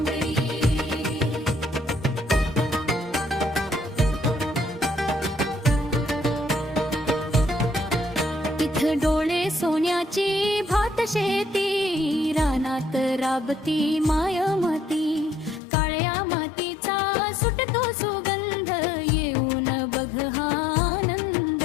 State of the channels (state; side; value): drops out; right; at 15.6 s